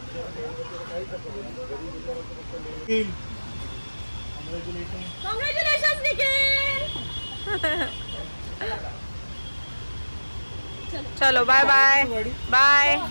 कॉंग्रॅच्युलेशन्स निखिल. चलो बाय बाय बाय.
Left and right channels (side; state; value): both; inverted; correlation -1.00